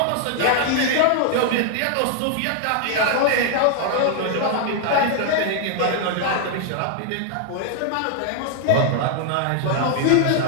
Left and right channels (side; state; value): both; different; correlation 0.00